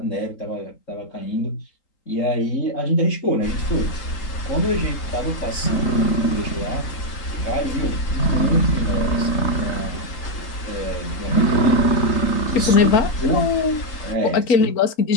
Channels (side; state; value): right; late; 3.8 ms